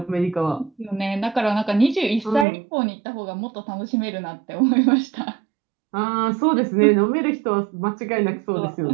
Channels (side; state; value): left; drops out; at 2.5 s